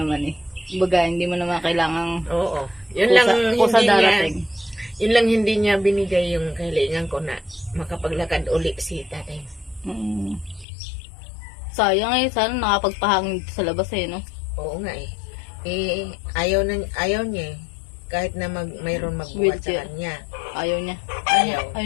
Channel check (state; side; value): drops out; right; at 10.7 s